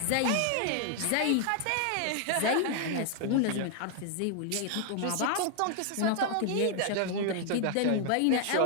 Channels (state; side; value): different; both; correlation 0.00